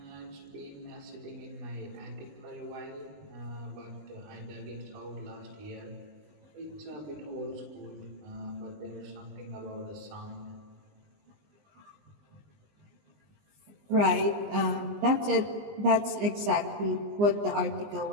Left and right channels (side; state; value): left; late; 19 ms